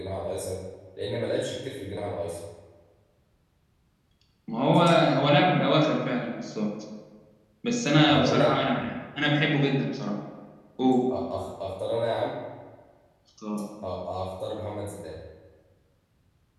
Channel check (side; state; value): both; identical; correlation 1.00